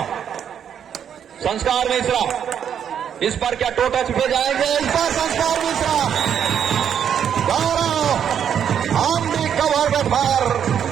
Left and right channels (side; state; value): left; quieter; 8.6 dB